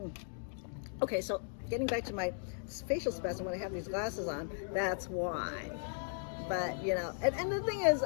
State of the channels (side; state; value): right; silent; digital silence